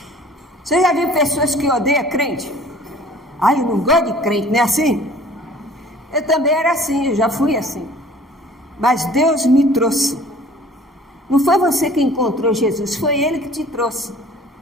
Você já viu pessoas que odeiam crente? Eu não gosto de crente, não é assim? Eu também era assim, eu já fui assim. Mas Deus me trouxe. Não foi você que encontrou Jesus, foi Ele que te trouxe.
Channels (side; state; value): both; normal; correlation 0.49